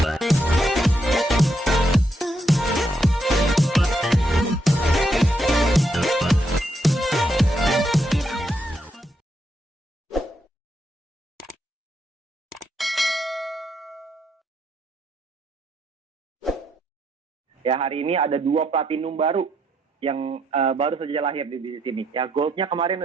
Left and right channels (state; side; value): normal; both; correlation 0.78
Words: Ya, hari ini ada 2 platinum baru yang baru saja lahir di bisnis ini. Ya, goldnya kemarin